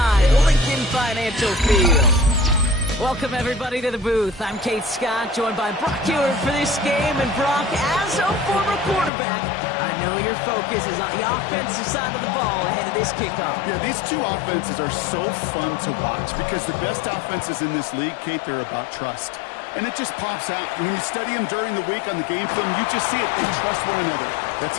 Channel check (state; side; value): drops out; right; at 9.1 s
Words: Lincoln Financial Field. Welcome, everybody, to the booth. I'm Kate Scott, joined by Brock Ewert for this game. And Brock, as a former quarterback, I know your focus is on the offensive side of the ball ahead of this kickoff. Yeah, these two offenses are so fun to watch because the best offenses in this league, Kate, they're about trust. And it just pops out. When you study them during the week on the game film, you just see it. They trust one another. That's